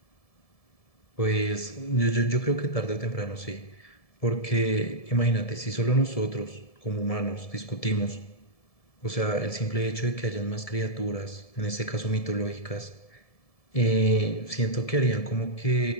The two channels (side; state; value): right; late; 1.7 ms